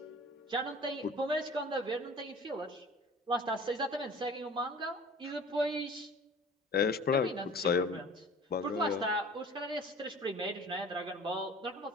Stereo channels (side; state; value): both; normal; correlation 0.44